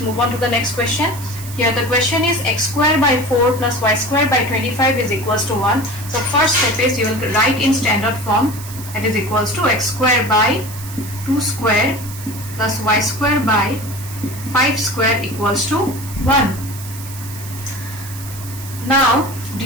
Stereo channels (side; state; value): right; noise; hiss, 14 dB below the sound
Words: move on to the next question. Here the question is x square by 4 plus y square by 25 is equals to 1. So first step is you will write in standard form, that is equals to x square by 2 square plus y square by 5 square equals to 1. Now